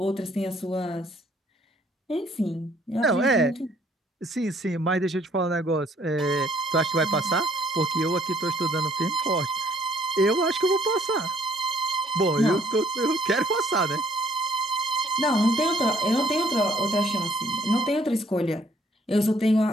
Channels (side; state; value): both; normal; correlation 0.63